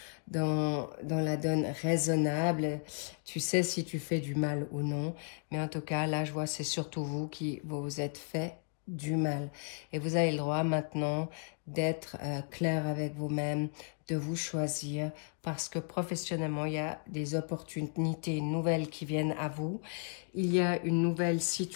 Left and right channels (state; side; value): silent; right; 55 dB below the other